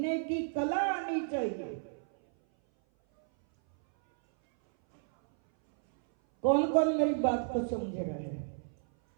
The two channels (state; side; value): silent; left; 57 dB below the other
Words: की कला आनी चाहिए। कौन कौन मेरी बात को समझ रहा है?